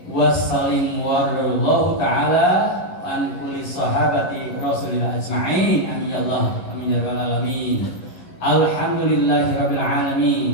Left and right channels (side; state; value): right; late; 11 ms